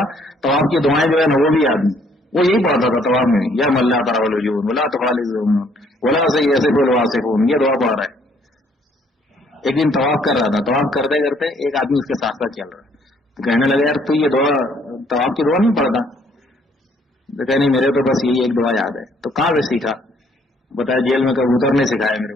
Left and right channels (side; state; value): both; normal; correlation 0.65